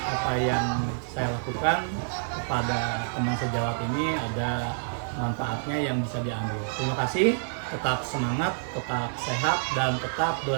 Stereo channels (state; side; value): silent; left; digital silence